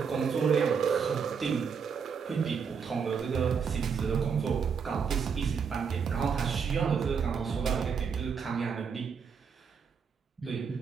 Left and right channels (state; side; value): quieter; left; 6.3 dB